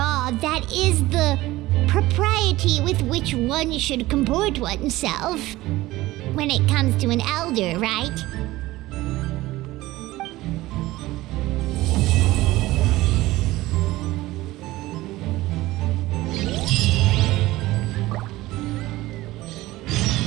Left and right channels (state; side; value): quieter; left; 17.9 dB